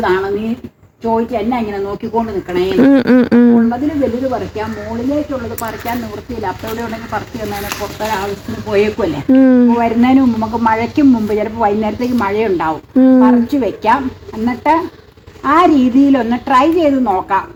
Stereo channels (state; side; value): identical; both; correlation 1.00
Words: നീ ചോദിച്ചു എന്നാ ഇങ്ങനെ നോക്കിക്കൊണ്ട് നിക്കണേ. ഉള്ളതിന് വലുത് പറിക്കാം, മുകളിലേക്കുള്ളത് പറിക്കാൻ നിവൃത്തിയില്ല. അപ്പൊ ഇവിടെ ഉണ്ടെങ്കിൽ പറിച്ചു തന്നതിനെ പുറത്തൊരു ആവശ്യത്തിന് പോയേക്കുമല്ലേ. വരുന്നതിന് മുമ്പ് നമുക്ക് മഴയ്ക്കും മുമ്പ് ചിലപ്പോൾ വൈകുന്നേരത്തേക്ക് മഴയുണ്ടാവും, പറിച്ചു വെക്കാം. എന്നിട്ട് ആ രീതിയിലൊന്ന് ട്രൈ ചെയ്ത് നോക്കാം.